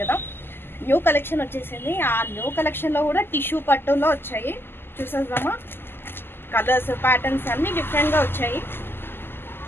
కదా. న్యూ కలెక్షన్ వచ్చేసింది. ఆ న్యూ కలెక్షన్లో కూడా టిష్యూ పట్టులో వచ్చాయి. చూసేద్దామా? కలర్స్, ప్యాటర్న్స్ అన్నీ డిఫరెంట్గా వచ్చాయి.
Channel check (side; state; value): right; late; 0.10 ms